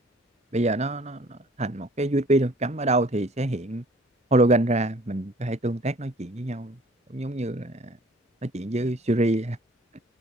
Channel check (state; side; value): normal; both; correlation 0.52